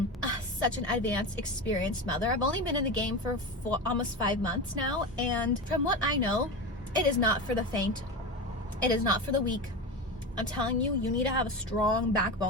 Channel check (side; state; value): both; normal; correlation 0.23